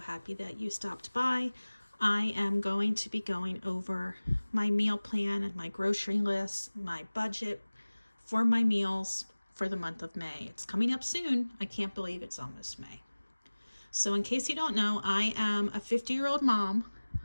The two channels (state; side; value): inverted; both; correlation -1.00